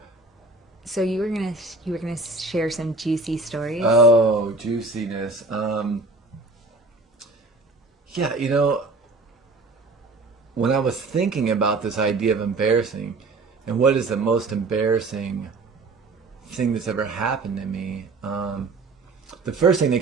So you were gonna share some juicy stories. Oh, juiciness. Yeah, when I was thinking about this idea of embarrassing, and what is the most embarrassing thing that's ever happened to me, the first thing that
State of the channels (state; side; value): quieter; left; 3.4 dB